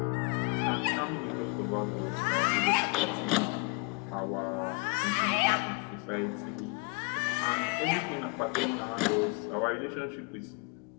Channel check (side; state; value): right; quieter; 28.1 dB